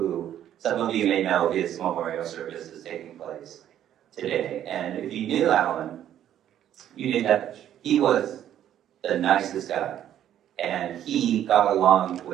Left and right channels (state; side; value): quieter; left; 11.0 dB